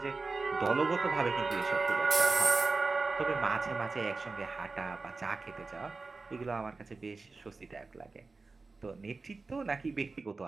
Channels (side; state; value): left; quieter; 3.9 dB